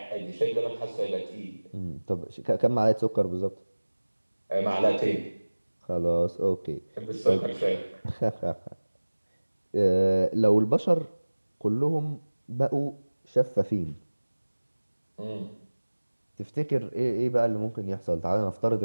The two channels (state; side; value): inverted; both; correlation -1.00